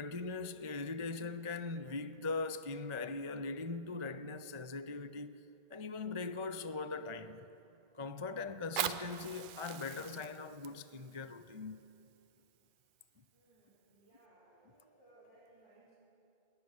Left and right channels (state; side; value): late; left; 2.4 ms